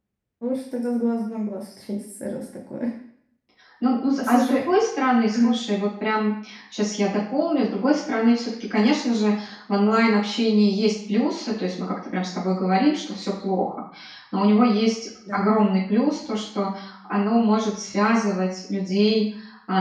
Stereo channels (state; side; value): identical; both; correlation 1.00